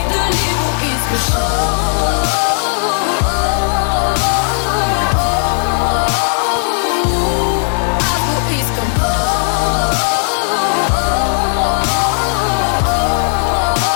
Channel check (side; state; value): right; silent; 61 dB below the other